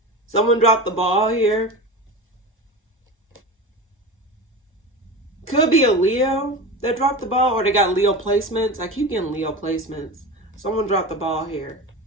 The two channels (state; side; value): normal; both; correlation 0.28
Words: Someone dropped the ball here. Could be a Leo that dropped the ball, or they got Leo placements. I keep getting Leo placements. Someone dropped the ball here.